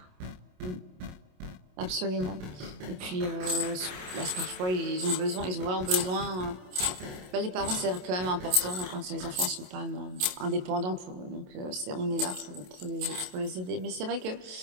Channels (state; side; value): late; left; 27 ms